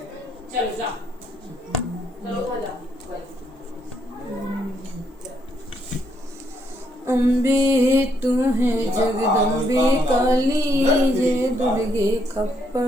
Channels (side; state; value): both; normal; correlation 0.74